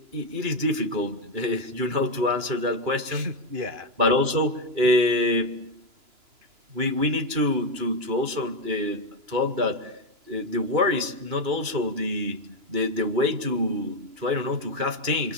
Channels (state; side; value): late; left; 2.9 ms